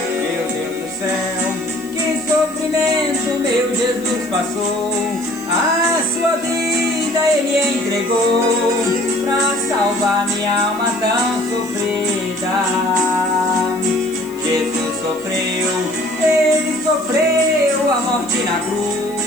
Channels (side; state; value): left; noise; hiss, 21 dB below the sound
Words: Meu Deus do céu, que sofrimento meu Jesus passou. A sua vida Ele entregou pra salvar minha alma tão sofrida. Jesus sofreu, Ele sofreu a morte na